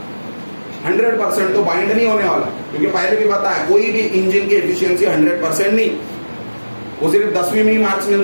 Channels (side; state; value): both; inverted; correlation -1.00